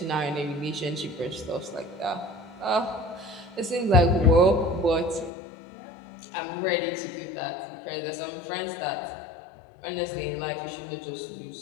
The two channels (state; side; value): drops out; right; at 5.3 s